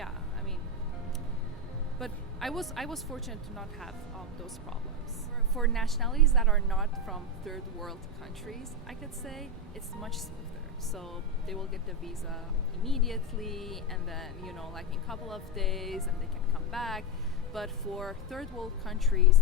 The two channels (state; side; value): normal; both; correlation 0.09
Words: I mean, but I was fortunate to not have those problems. For nationalities that are not from third world countries, I could say it's much smoother. So they will get the visa immediately, and then, you know, like in a couple of days, and they can come back. But for third world countries